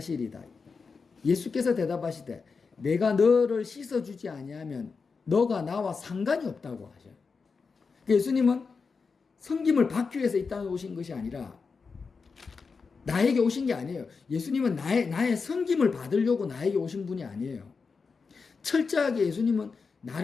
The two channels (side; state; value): right; quieter; 5.0 dB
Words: 예수께서 대답하시되 내가 너를 씻어주지 아니하면 너가 나와 상관이 없다고 하셔요. 예수님은 섬김을 받기 위해서 이 땅에 오신 것이 아니라 나에게 오신 게 아니에요. 예수님은 나의 섬김을 받으려고 나에게 오신 분이 아니에요. 철저하게 예수님은